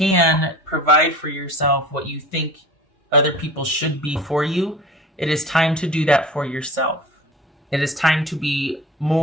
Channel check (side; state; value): both; normal; correlation 0.39